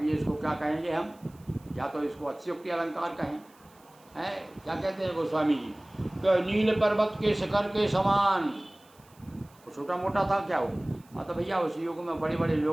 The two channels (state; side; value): noise; right; hiss, 29 dB below the sound